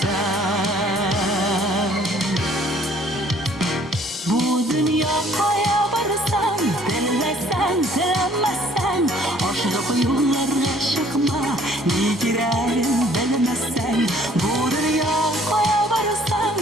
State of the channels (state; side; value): normal; both; correlation 0.58